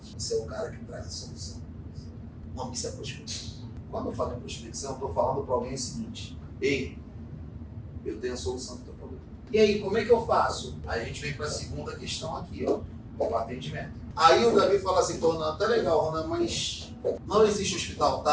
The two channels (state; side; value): identical; both; correlation 1.00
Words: Você é o cara que traz a solução. Não, isso é prospecção. Quando eu falo em prospecção, eu estou falando para alguém o seguinte: ei, eu tenho a solução do teu problema. E aí, como é que eu faço? Aí a gente vem para a segunda questão aqui, ó, o atendimento. Aí o Davi fala assim, Ronan, tá legal, Ronan, mas não existe hospital